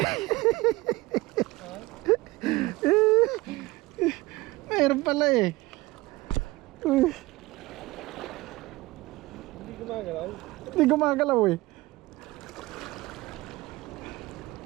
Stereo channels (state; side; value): quieter; left; 20.3 dB